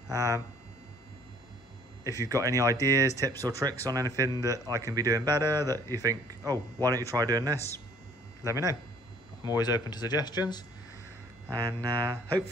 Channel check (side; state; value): both; normal; correlation 0.57